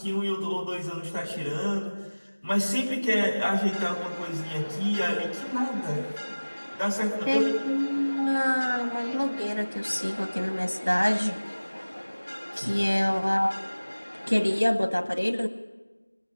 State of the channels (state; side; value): inverted; both; correlation -1.00